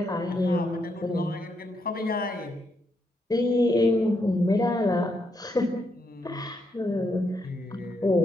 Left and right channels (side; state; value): both; normal; correlation 0.79